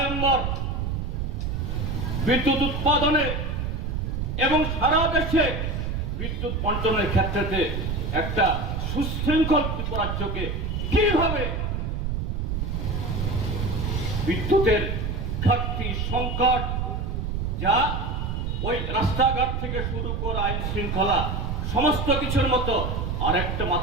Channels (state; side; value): noise; right; rumble, 2 dB below the sound